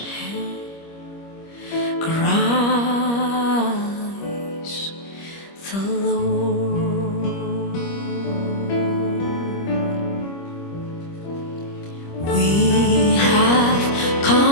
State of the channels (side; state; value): right; late; 25 ms